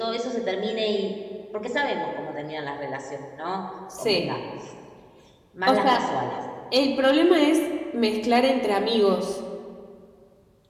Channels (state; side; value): identical; both; correlation 1.00